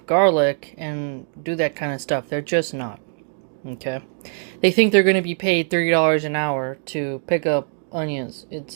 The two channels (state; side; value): silent; left; digital silence